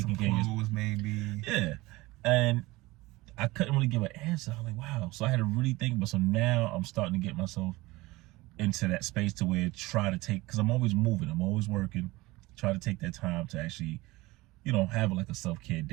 care of yourself. Maybe. Yeah. And I couldn't really give an answer. I was like, wow. So I had to really think about it. So now I'm starting to get myself into that space to where because I'm always moving, I'm always working, try to take that time to actually, have like a self-care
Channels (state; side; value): quieter; left; 20.7 dB